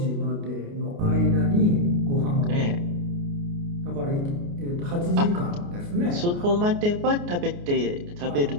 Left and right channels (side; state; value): left; late; 29 ms